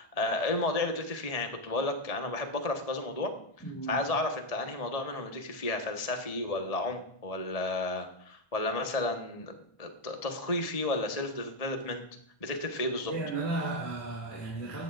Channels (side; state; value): right; late; 1.7 ms